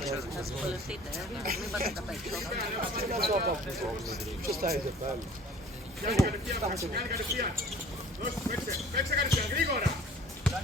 Θα δυσκολευτείτε, μην πάτε τα περισσότερα. Ποιος τα είδε πάλι? Παίξε κατευθείαν, γρήγορα.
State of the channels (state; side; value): normal; both; correlation 0.48